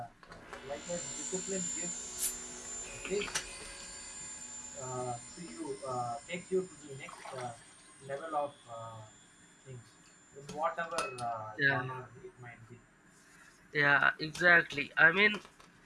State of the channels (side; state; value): both; identical; correlation 1.00